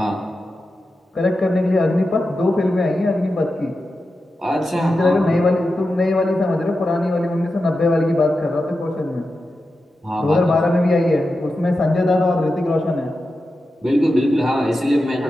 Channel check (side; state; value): both; normal; correlation 0.91